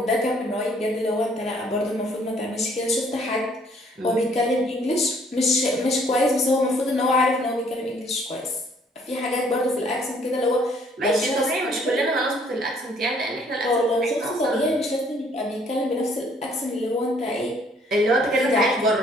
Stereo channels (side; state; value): both; normal; correlation 0.62